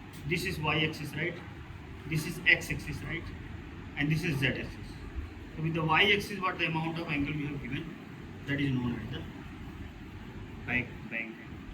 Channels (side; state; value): both; identical; correlation 1.00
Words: this is y-axis, right? This is x-axis, right? And this is z-axis. So with the y-axis, what the amount of angle we have given, that is known as the bank.